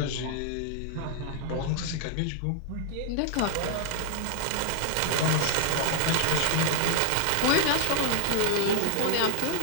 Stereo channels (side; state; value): both; different; correlation 0.00